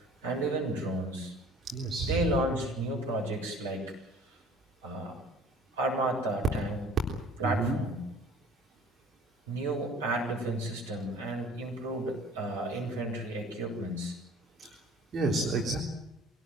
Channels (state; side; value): normal; both; correlation 0.49